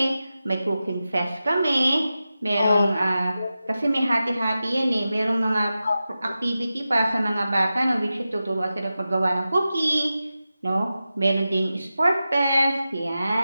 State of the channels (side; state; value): both; inverted; correlation -0.93